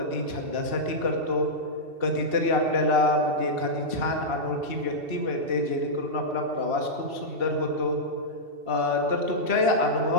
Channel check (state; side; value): late; left; 2.7 ms